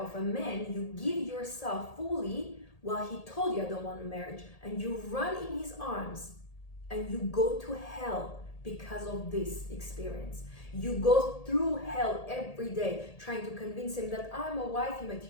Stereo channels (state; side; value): late; right; 1.8 ms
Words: of a man. You give yourself fully while he told you I don't want a marriage. And you run in his arms and you go to hell because of this experience. You go through hell every day trying to convince him that I'm a wifey